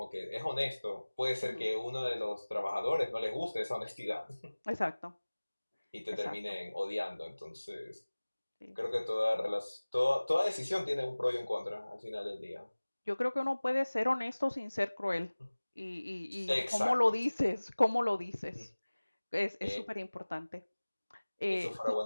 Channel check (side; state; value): both; inverted; correlation -1.00